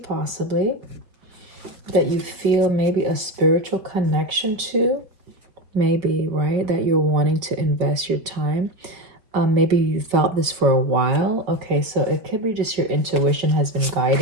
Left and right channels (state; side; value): late; left; 5.0 ms